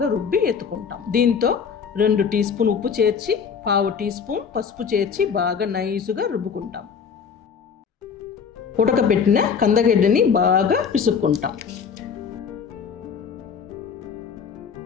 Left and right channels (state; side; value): quieter; right; 6.5 dB